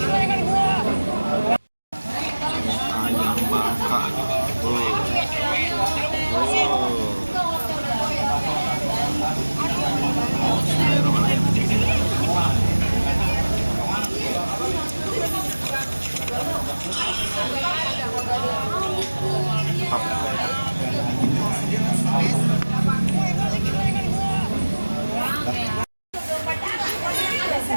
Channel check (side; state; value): both; inverted; correlation -1.00